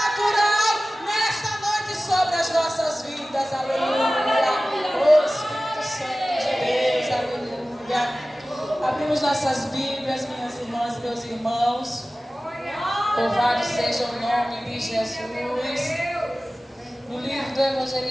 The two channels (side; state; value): both; normal; correlation 0.96